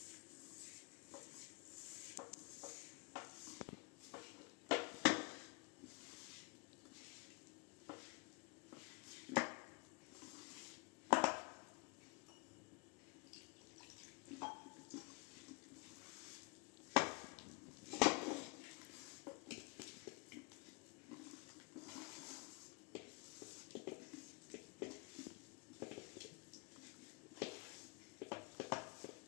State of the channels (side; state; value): right; quieter; 30.9 dB